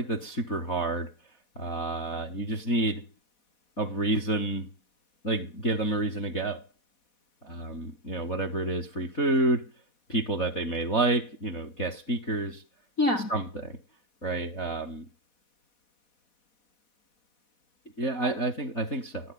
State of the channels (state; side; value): late; right; 4.1 ms